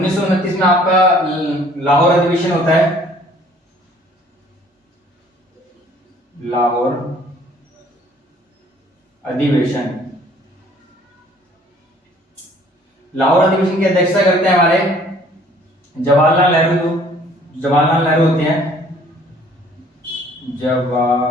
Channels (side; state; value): both; normal; correlation 0.56